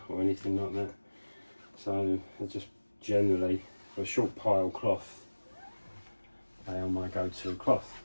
or anything like that, so they're just generally, for a short pile cloth, they are my go-to cloth.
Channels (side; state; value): both; inverted; correlation -1.00